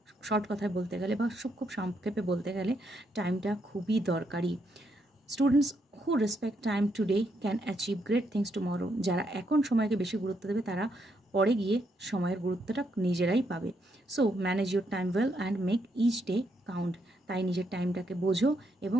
Short কথায় বলতে গেলে বা খুব সংক্ষেপে বলতে গেলে টাইমটা খুবই দরকারি। Students who respect time today can achieve great things tomorrow. যারা এখন সময়কে বেশি গুরুত্ব দেবে তারা পরে গিয়ে সময়ের গুরুত্বটা নিজেরাই পাবে। So manage your time well and make each day count. তাই নিজের টাইমটাকে বোঝো এবং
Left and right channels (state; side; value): normal; both; correlation 0.77